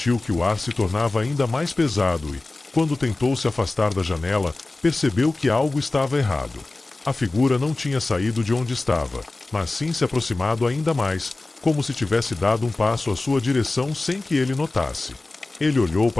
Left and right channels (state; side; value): quieter; right; 3.1 dB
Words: que o ar se tornava ainda mais pesado e, quando tentou se afastar da janela, percebeu que algo estava errado. A figura não tinha saído de onde estava, mas sim se aproximado ainda mais, como se tivesse dado um passo à sua direção sem que ele notasse. Ele olhou